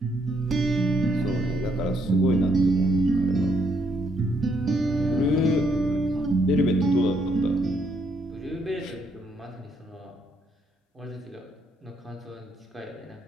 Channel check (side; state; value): both; normal; correlation 0.73